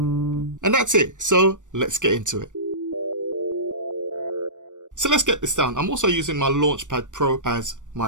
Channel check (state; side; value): late; left; 0.86 ms